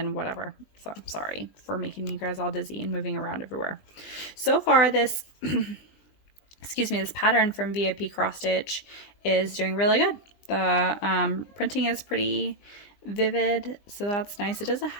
whatever. So I'm sorry for making you guys all dizzy and moving around everywhere. So far this excuse me, this pattern from Vipcrossstitch is doing really good. The printing is pretty vivid, so that's nice. It doesn't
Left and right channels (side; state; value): right; late; 20 ms